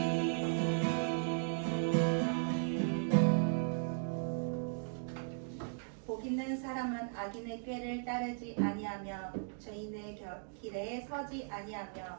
복 있는 사람은 악인의 꾀를 따르지 아니하며 죄인의 길에 서지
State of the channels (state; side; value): silent; left; digital silence